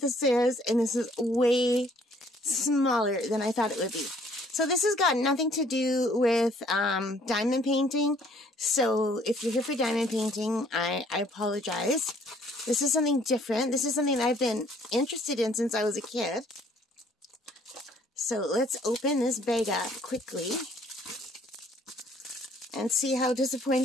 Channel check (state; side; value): normal; both; correlation 0.61